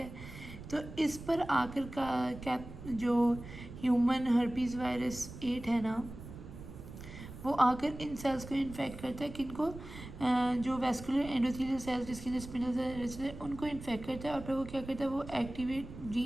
तो इस पर आकर का जो ह्यूमन हर्पीज़ वायरस 8 है ना, वो आकर इन सेल्स को इन्फेक्ट करता है। किनको? जो वैस्कुलर एंडोथेलियल सेल्स जिसके अंदर स्पिंडल सेल्स है, उनको इन्फेक्ट करता है। और फिर वो क्या करता है, वो एक्टिवेट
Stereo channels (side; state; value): right; noise; rumble, 13 dB below the sound